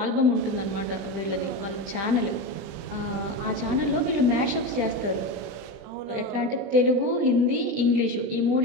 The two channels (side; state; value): left; late; 20 ms